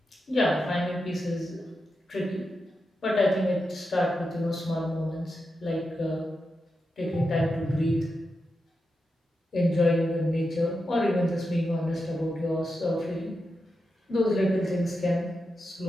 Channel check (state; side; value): normal; both; correlation 0.88